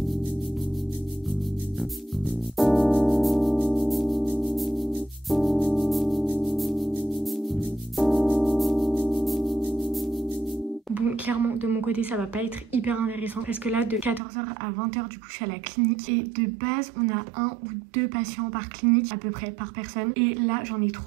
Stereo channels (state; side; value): drops out; left; at 14.2 s